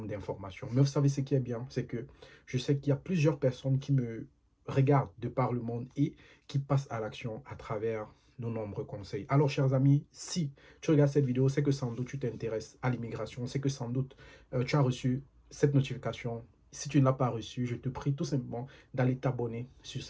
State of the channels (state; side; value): identical; both; correlation 1.00